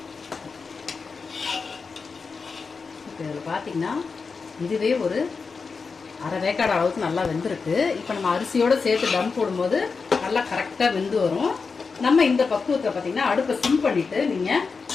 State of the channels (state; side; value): quieter; right; 4.9 dB